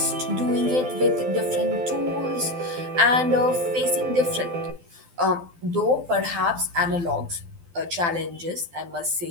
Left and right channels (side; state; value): left; late; 12 ms